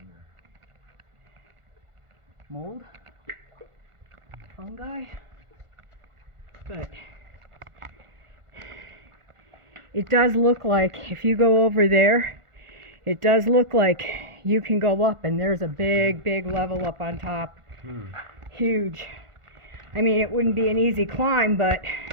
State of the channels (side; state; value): left; late; 1.5 ms